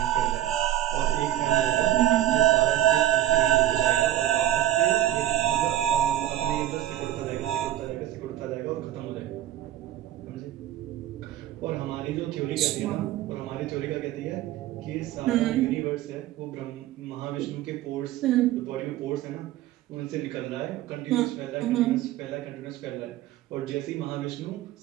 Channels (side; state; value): left; quieter; 13.1 dB